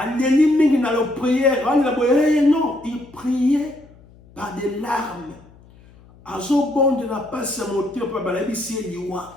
dans la prière. Non, il priait par des larmes.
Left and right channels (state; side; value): noise; left; hum, 25 dB below the sound